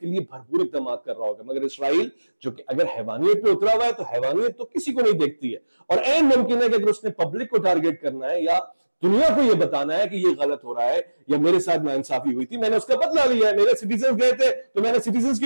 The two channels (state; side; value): inverted; both; correlation -1.00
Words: लिए भरपूर इक़दाम कर रहा होगा, मगर इसराइल जो कि अगर हैवानियत पे उतरा हुआ है, तो हैवानियत तो किसी को नहीं देखती है। और ऐन मुमकिन है कि अगर उसने पब्लिक को टारगेट करना है या दुनिया को यह बताना है कि यह गलत हो रहा है या मेरे साथ नाइंसाफी हुई थी, मैंने उसका बदला लिया है, मेरे सिटीजन गए थे तो मैंने सिटीजन